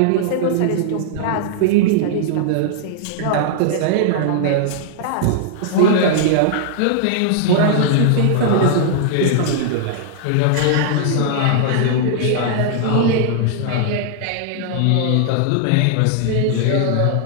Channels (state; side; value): different; both; correlation -0.01